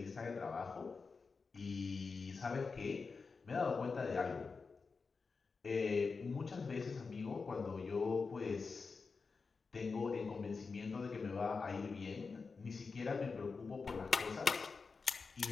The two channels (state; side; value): quieter; right; 4.7 dB